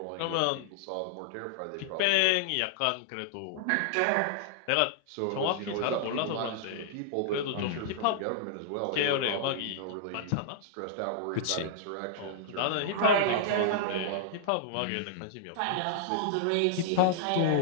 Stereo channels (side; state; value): both; different; correlation -0.01